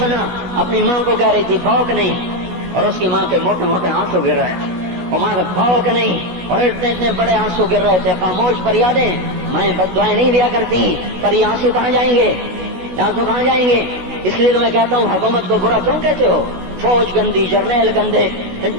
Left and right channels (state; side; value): late; left; 16 ms